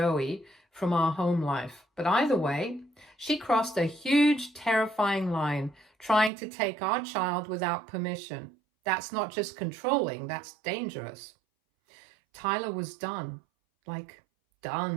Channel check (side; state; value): left; drops out; at 6.3 s